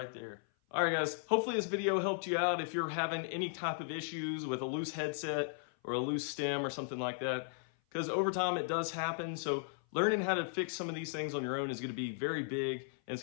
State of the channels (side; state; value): right; silent; 54 dB below the other